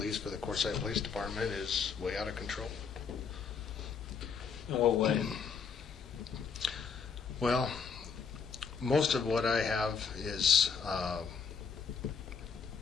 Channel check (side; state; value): right; quieter; 6.0 dB